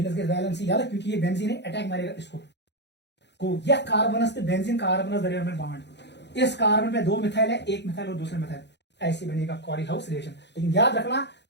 वैलेंसी याद है, क्योंकि ये बेंजीन है, अटैक मारेगा इसको को, यह कार्बनस से बेंजीन कार्बनस दरमियान में बॉन्ड, इस कार्बन पे 2 मिथाइल है, एक मिथाइल और दूसरे मिथाइल, ऐसे बनेगा कॉरी हाउस रिएक्शन। लेकिन याद रखना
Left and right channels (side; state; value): right; late; 0.50 ms